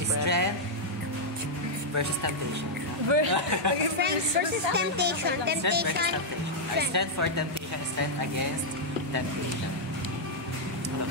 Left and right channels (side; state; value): both; normal; correlation -0.04